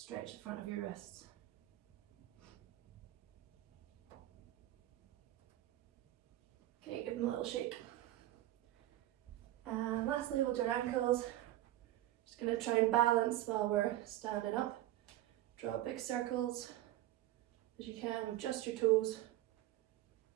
the front of your wrists. Okay, give them a little shake. And lastly, hold your ankles. Just going to try and balance while we're standing up. Draw big circles as you can with just your toes.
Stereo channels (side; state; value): left; quieter; 15.0 dB